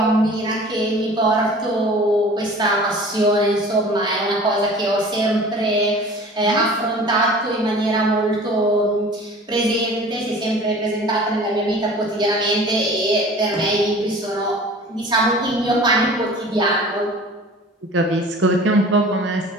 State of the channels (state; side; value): normal; both; correlation 0.44